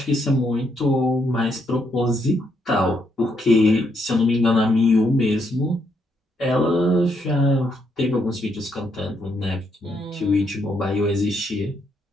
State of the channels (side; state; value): both; normal; correlation 0.76